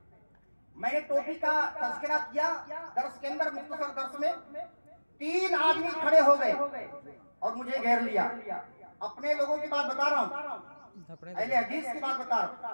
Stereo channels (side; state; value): both; inverted; correlation -1.00